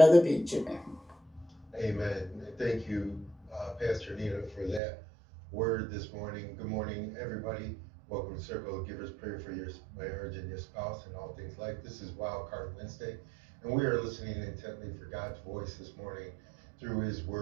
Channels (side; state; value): left; drops out; at 4.8 s